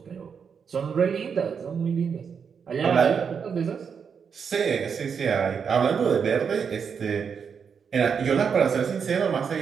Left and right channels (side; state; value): left; quieter; 6.5 dB